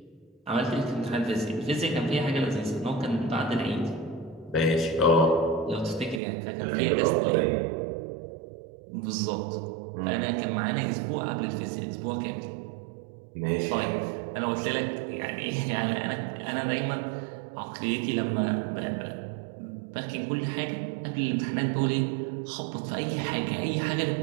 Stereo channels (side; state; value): left; drops out; at 6.2 s